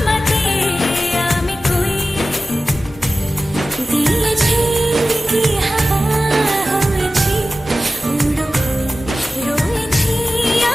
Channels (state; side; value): normal; both; correlation 0.95